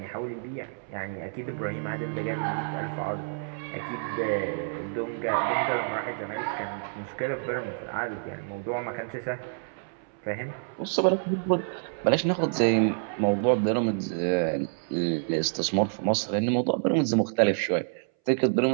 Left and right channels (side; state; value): left; silent; 59 dB below the other